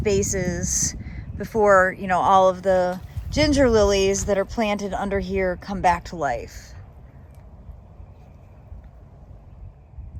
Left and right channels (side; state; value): both; identical; correlation 1.00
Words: before, you know, all of the ginger lilies that are planted under here come back to life.